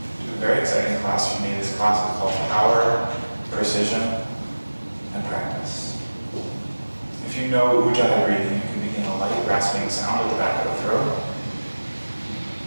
to a very exciting class for me. This class is called Power, Precision, and Practice. If you know Ujjayi breathing, you can begin a light rasping sound at the back of the throat.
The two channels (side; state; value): both; inverted; correlation -1.00